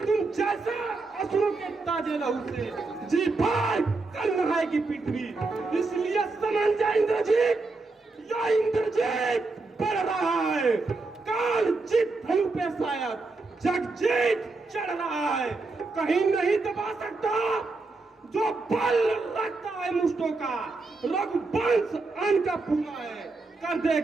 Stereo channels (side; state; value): left; quieter; 3.6 dB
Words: तुम जैसे असुरों के ताजे लहू से जी भर कर नहाएगी पृथ्वी। इसलिए समझ जा इंद्रजीत, या इंद्रजीत बढ़ रहा है। काल जीत धनु पे शायद जगजीत चढ़ रहा है। कहीं नहीं दबा सकता जो बल रखता है मुष्टों का। रघुवंश अन्न का पूरा है, कर